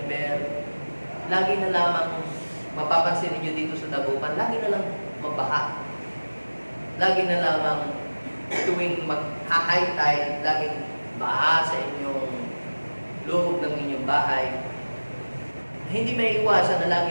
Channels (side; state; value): both; inverted; correlation -1.00